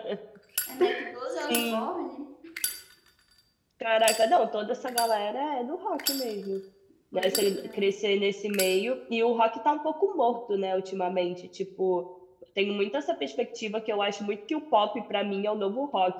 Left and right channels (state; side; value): identical; both; correlation 1.00